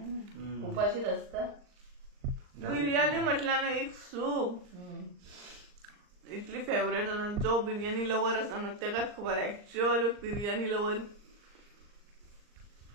उपाशीच आसता बिर्याणी म्हटल्यार ना एक सूप इतली फेवरेट आसा जो बिर्याणी लवर आसा न्हू तेकाच खबर actual biryani lover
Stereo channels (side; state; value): left; late; 39 ms